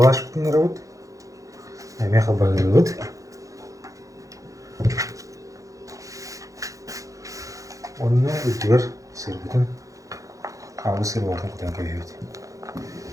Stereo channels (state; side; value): late; left; 0.16 ms